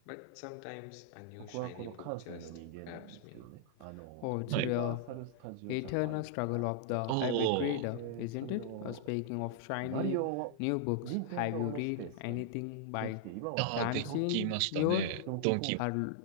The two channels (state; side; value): different; both; correlation -0.01